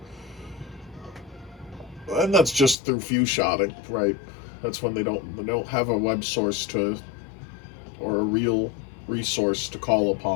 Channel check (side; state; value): right; drops out; at 2.8 s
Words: and that's just through few shotting, right? That's when they don't have a web source to, or a real resource to call